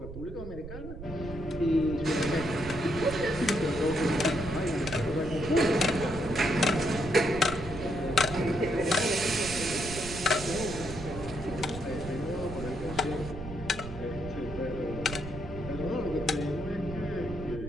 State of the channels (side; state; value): right; noise; rumble, 10 dB below the sound